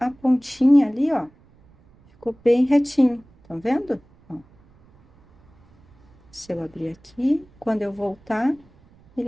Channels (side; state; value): right; noise; rumble, 30 dB below the sound